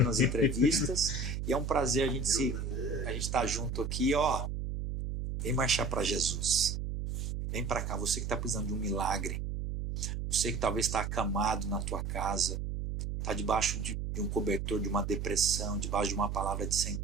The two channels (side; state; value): right; noise; hum, 3 dB below the sound